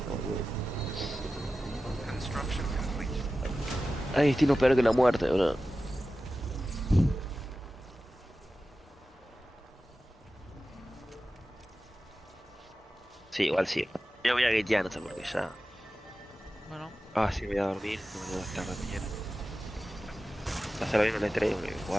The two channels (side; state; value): both; normal; correlation 0.94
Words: boludo. Construction complete. Hay destino peor que la muerte, bro. Sí, igual sí. Yo voy a gatear, no sé por qué ya. Bueno, Ah, sí, voy a dormir. No me voy a estar de mañana. Hacerlo bien en el E3 porque